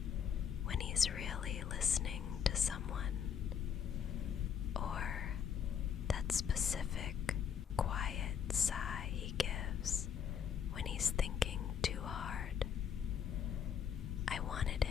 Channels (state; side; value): quieter; right; 8.0 dB